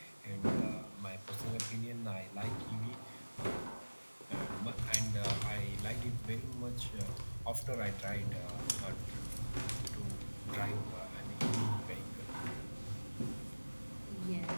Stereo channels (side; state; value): both; inverted; correlation -1.00